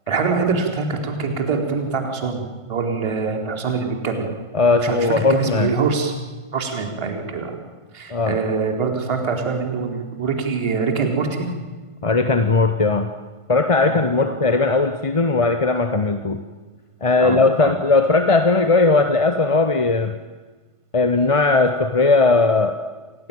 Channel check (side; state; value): right; late; 1.5 ms